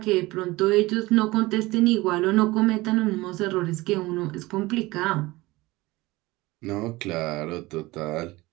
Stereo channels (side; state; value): left; quieter; 20.4 dB